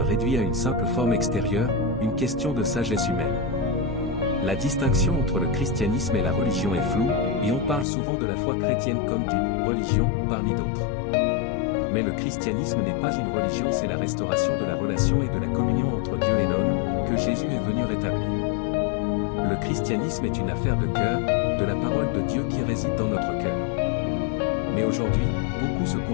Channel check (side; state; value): right; drops out; at 7.9 s